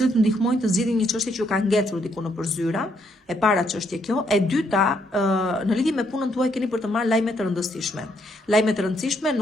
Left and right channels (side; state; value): both; normal; correlation 0.73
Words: ndihmojnë të zgjidhin një çështje që ju ka ngecur diku nëpër zyra, e para çështje kjo, e dyta, në lidhje me punën tuaj keni për të marrë lajme të rëndësishme. Lajme të rëndësishme,